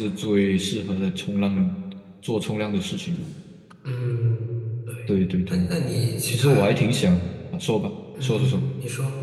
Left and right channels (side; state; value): both; identical; correlation 1.00